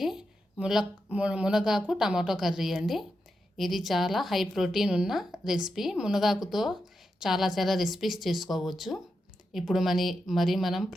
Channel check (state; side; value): normal; both; correlation 0.87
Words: మునగాకు టమాటో కర్రీ అండి. ఇది చాలా హై ప్రోటీన్ ఉన్న రెసిపీ. మునగాకుతో చాలా రెసిపీస్ చేసుకోవచ్చు. ఇప్పుడు మరి మనం